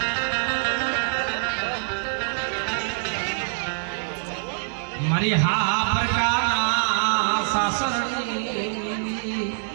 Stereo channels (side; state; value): left; silent; digital silence